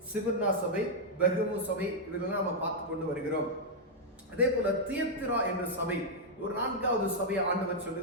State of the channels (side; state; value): both; normal; correlation -0.04